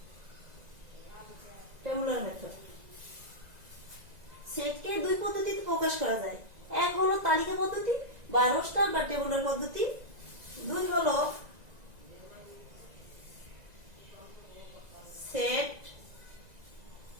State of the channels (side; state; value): left; late; 1.9 ms